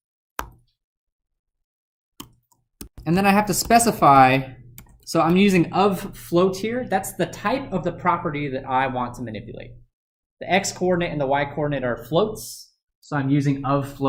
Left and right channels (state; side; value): identical; both; correlation 1.00